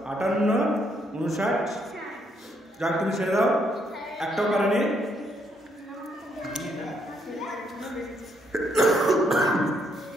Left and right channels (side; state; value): both; normal; correlation 0.74